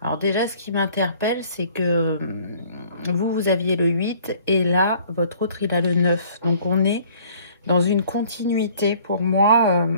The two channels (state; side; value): inverted; both; correlation -0.55